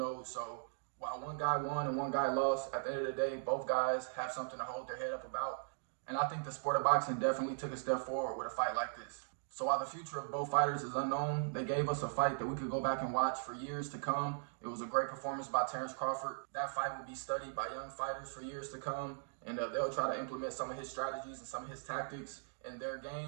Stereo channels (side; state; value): left; silent; digital silence